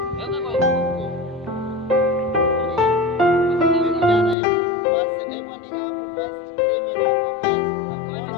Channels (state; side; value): drops out; right; at 4.4 s